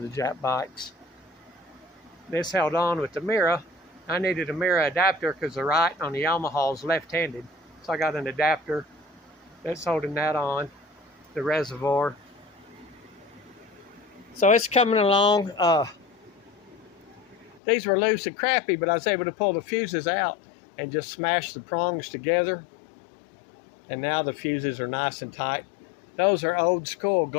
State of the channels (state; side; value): drops out; right; at 17.6 s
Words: Jap bikes. This held on with the mirror. I needed a mirror adapter because the right on the Yamaha is left-handed. So I got an adapter that's holding that on, the reservoir. So it's coming along. These were loose and crappy, but I was able to pull the fuses out and just smash the prongs together. And now the fuses are nice and tight. Those are old school